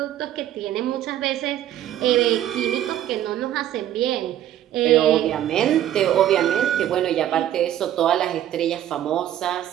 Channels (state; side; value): quieter; left; 11.9 dB